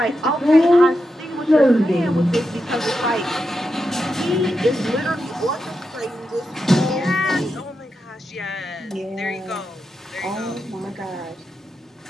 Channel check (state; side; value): normal; both; correlation 0.87